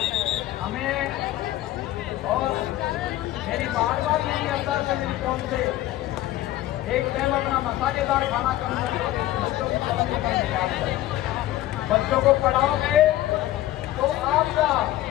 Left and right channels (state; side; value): quieter; right; 14.9 dB